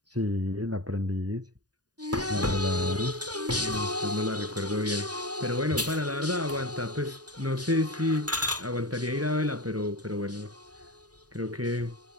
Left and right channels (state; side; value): late; left; 0.68 ms